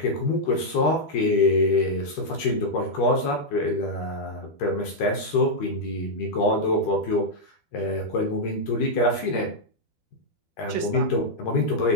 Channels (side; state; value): right; late; 13 ms